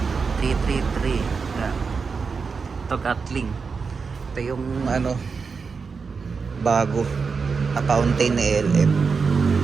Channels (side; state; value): left; quieter; 5.2 dB